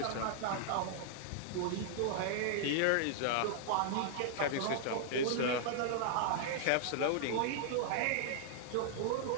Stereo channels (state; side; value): different; both; correlation -0.01